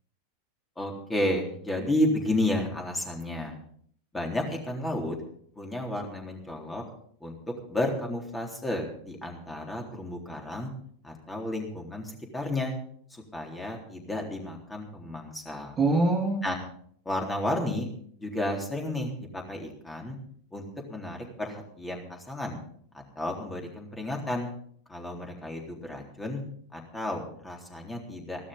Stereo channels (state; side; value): normal; both; correlation 0.63